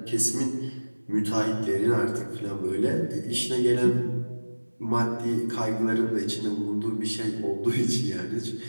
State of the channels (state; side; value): inverted; both; correlation -1.00